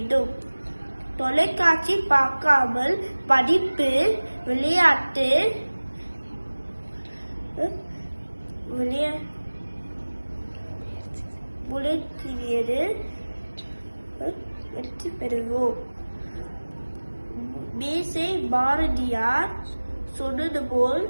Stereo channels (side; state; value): both; inverted; correlation -1.00